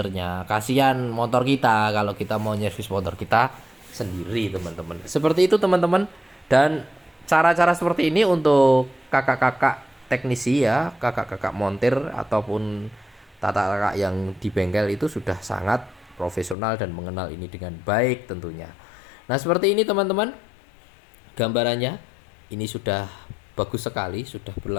kasihan motor kita kalau kita mau nyervis motor kita sendiri teman-teman. Seperti itu teman-teman. Dan cara-cara seperti ini untuk kakak-kakak teknisi ya, kakak-kakak montir ataupun tata kakak yang di bengkel itu sudah sangat profesional dan mengenal ini dengan baik tentunya. Nah seperti ini teman-teman gambarannya. Ini sudah bagus sekali, sudah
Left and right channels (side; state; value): right; drops out; at 16.6 s